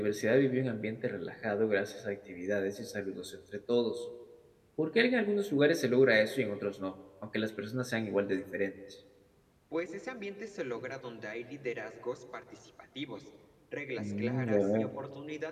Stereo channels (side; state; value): both; identical; correlation 1.00